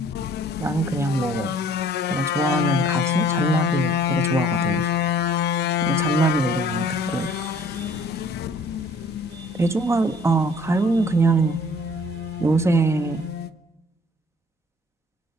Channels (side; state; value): both; normal; correlation 0.55